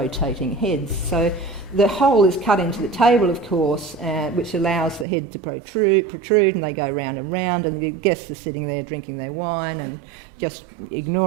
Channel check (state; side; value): drops out; left; at 5.1 s